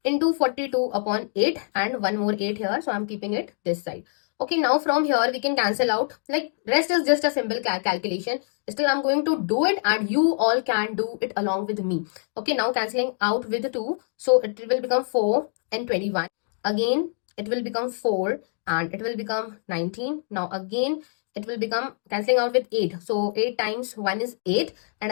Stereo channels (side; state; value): right; silent; digital silence